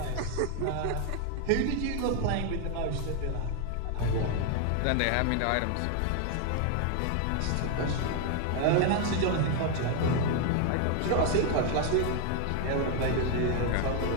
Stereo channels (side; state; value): both; different; correlation 0.01